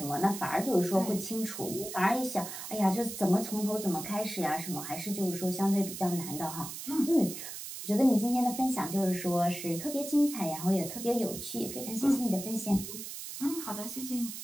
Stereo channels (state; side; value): noise; right; hiss, 9 dB below the sound